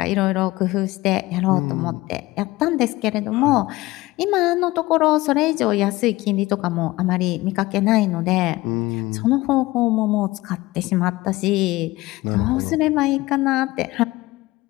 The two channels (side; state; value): right; quieter; 19.3 dB